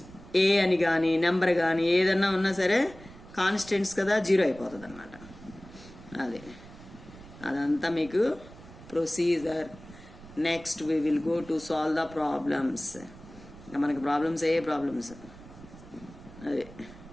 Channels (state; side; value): noise; right; rumble, 19 dB below the sound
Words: ఏ అని కానీ నెంబర్ కానీ ఏదన్నా ఉన్నా సరే కాన్స్టెంట్స్ కదా, 0 అయిపోతుంది అన్నమాట. అదంతా మీకు procedure. Next we will go to solve the problems. మనకి ప్రాబ్లమ్స్ అదే